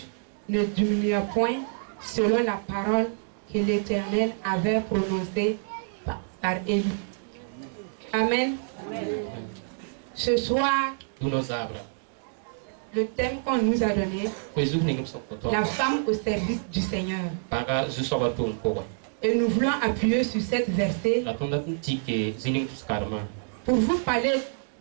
ne diminua point, selon la parole que l'Éternel avait prononcée par Élie. Amen. Amen. Ce soir, le thème qu'on nous a donné, la femme au service du Seigneur. Et nous voulons appuyer sur cette verset pour vous parler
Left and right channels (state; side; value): silent; left; digital silence